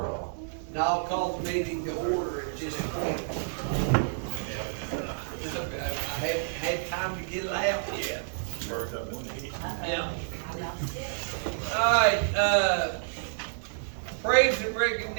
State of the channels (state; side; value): silent; left; digital silence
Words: all. Now I'll call the meeting to order at this point. I haven't had time to get it out yet. Yeah. All right, praise and